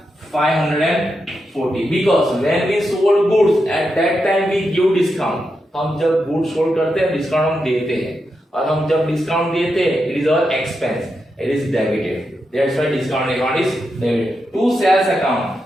540, because when we sold goods at that time we give discount. हम जब गुड्स सोल्ड करते हैं डिस्काउंट हम देते हैं, और हम जब डिस्काउंट देते हैं it is our expense, it is debited, that's why discount account is debited. To sales account,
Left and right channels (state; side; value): normal; both; correlation 0.86